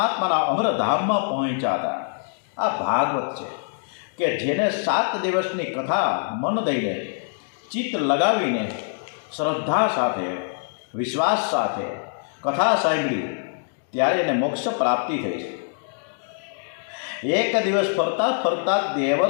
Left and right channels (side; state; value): right; silent; digital silence